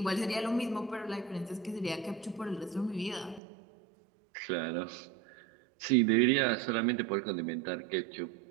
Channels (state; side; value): drops out; left; at 3.4 s